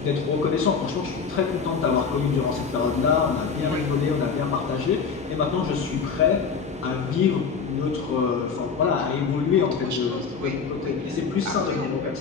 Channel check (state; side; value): quieter; right; 5.6 dB